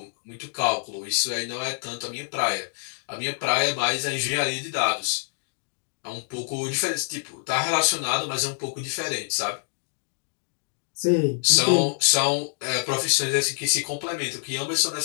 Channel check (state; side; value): silent; right; digital silence